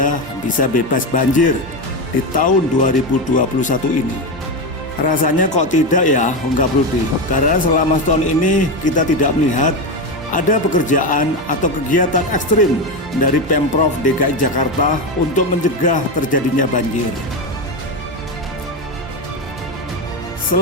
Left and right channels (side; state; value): both; normal; correlation 0.14